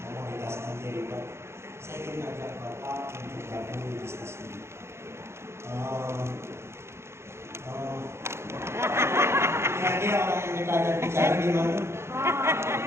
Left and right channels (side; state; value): left; late; 0.13 ms